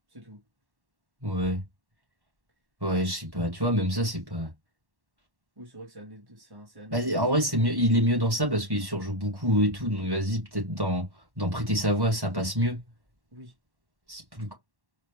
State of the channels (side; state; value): left; late; 1.1 ms